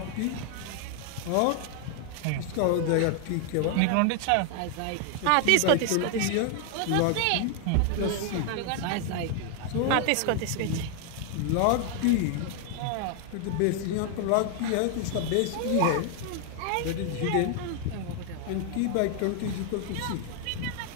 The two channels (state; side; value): different; both; correlation 0.00